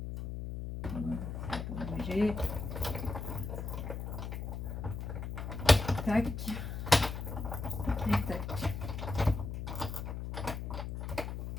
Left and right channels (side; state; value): left; noise; hum, 5 dB below the sound